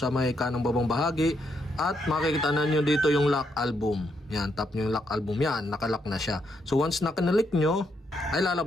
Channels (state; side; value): normal; both; correlation 0.77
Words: may kanang babang bahagi. At makikita na nyo dito yung lock album. Yan, tap nyo yung lock album. Yan, nakalock na siya. So once na kinalik nyo, ay